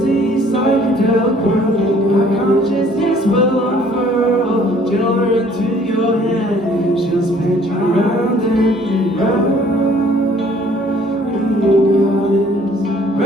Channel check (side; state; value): both; normal; correlation 0.57